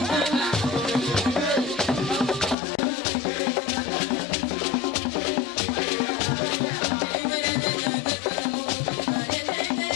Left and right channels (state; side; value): drops out; right; at 2.6 s